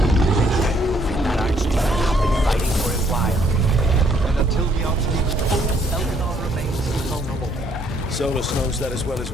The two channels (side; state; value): both; normal; correlation 0.67